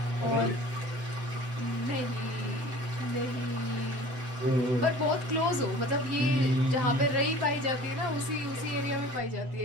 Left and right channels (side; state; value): left; late; 7.9 ms